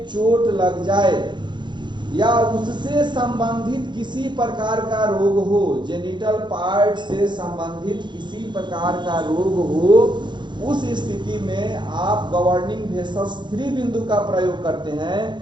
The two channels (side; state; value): left; late; 0.22 ms